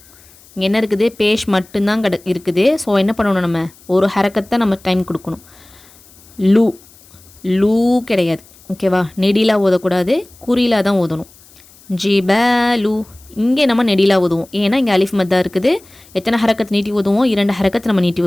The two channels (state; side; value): noise; left; hiss, 26 dB below the sound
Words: இங்கே என்ன இருக்குது, பேஷ் மட்டும்தான் இருக்குது. ஸோ என்ன பண்ணணும், நம்ம ஒரு ஹரக்கத்தை நம்ம டைம் கொடுக்கணும். லு லூ கிடையாது. ஓகேவா, நெடிலா ஓதக்கூடாது, குறிலா தான் ஓதணும். ஜிபலு. இங்கே நம்ம நெடிலா ஓதுவோம், ஏன்னா இங்கே அலிஃப் மத்தா இருக்குது. எத்தனை ஹரக்கத்து நீட்டி ஓதுவோம், 2 ஹரக்கத்து நம்ம நீட்டி